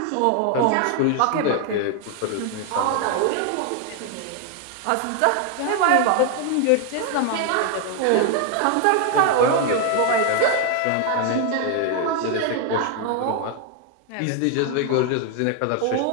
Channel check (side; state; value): both; different; correlation 0.00